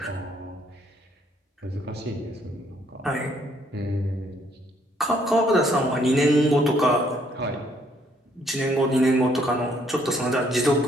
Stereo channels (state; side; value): normal; both; correlation 0.67